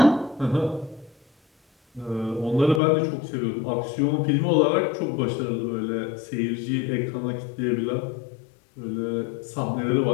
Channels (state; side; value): drops out; right; at 2.8 s